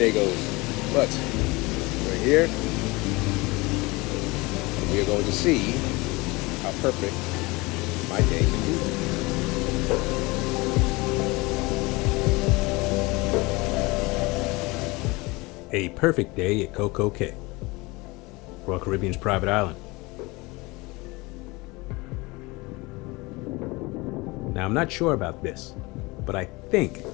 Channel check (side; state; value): right; quieter; 23.8 dB